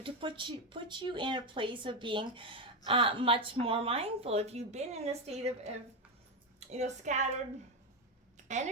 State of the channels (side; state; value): both; normal; correlation 0.10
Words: to put you in a place of being much more mindful. If you've been in a state of scattered